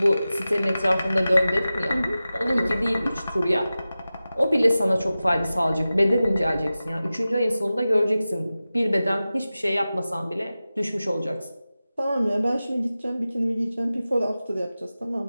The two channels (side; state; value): both; inverted; correlation -0.95